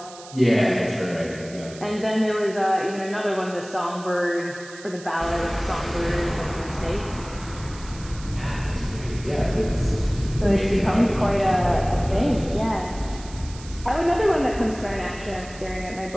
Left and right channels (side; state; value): right; noise; hiss, 18 dB below the sound